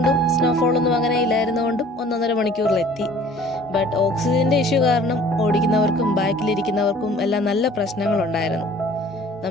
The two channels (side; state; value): both; normal; correlation 0.51